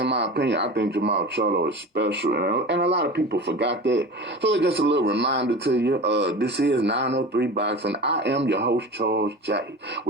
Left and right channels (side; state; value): both; normal; correlation 0.33